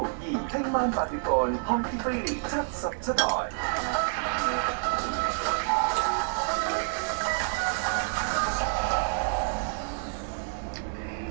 而聽晚8點半，康熙菲利77台。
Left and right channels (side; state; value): left; silent; 59 dB below the other